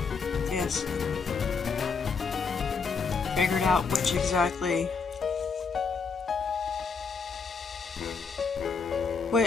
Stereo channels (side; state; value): right; quieter; 5.2 dB